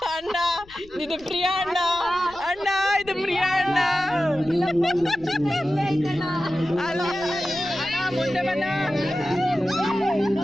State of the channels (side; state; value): left; noise; rumble, 24 dB below the sound